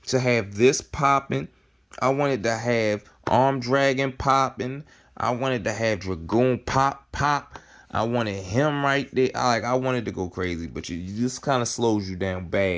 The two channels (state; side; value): identical; both; correlation 1.00